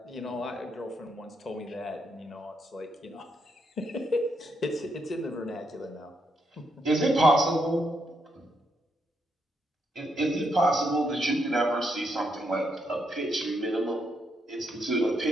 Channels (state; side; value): normal; both; correlation 0.79